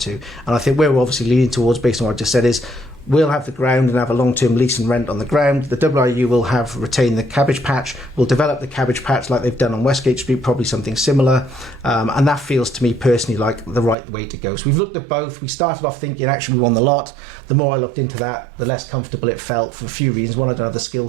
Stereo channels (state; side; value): drops out; left; at 14.0 s